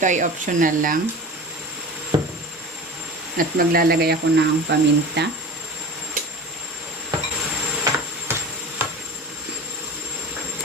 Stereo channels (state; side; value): normal; both; correlation 0.34